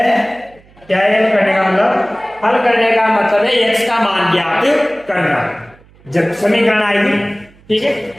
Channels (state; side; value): noise; right; hum, 28 dB below the sound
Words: क्या है? हल करने का मतलब, हल करने का मतलब है x का मान ज्ञात करना। जब समीकरण आएगी, ठीक है,